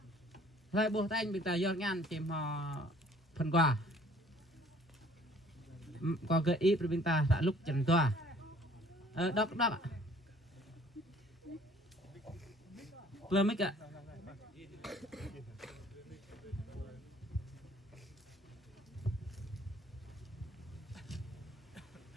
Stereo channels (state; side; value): normal; both; correlation 0.56